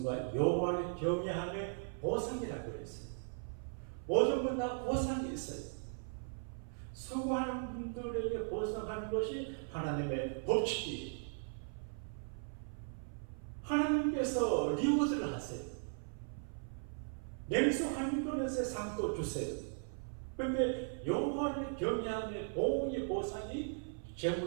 여호와를 경외함의 보상이라고 그랬어요. 모든 건 다 보상이 있어요. 수고하는 분들에게 보상하는 것이 하나님의 법칙이에요. 하나님께서 리워드를 하세요. 냉수 한 그릇에 상도 주세요. 그런데 여호와를 경외함의 보응의 보상이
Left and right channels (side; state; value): left; silent; 52 dB below the other